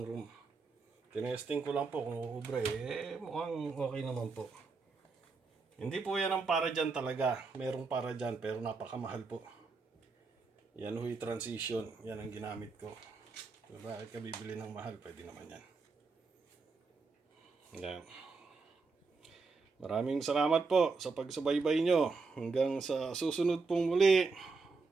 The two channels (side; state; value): left; quieter; 4.3 dB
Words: room. Tinesting ko lang po kung uubra mukhang okay naman po. Hindi po yan ang para dyan talaga. Merong para dyan pero napakamahal po. Yan huy transition. Yan ang ginamit ko. So, bakit ka bibili ng mahal? Pwede naman yan. Yan. Maraming salamat po sa pagsubaybay nyo. Hanggang sa susunod pong muli.